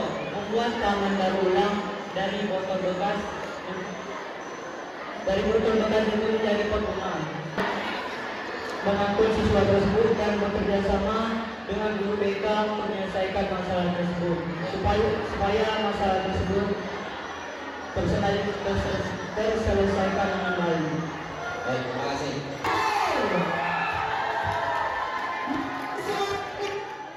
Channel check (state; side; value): identical; both; correlation 1.00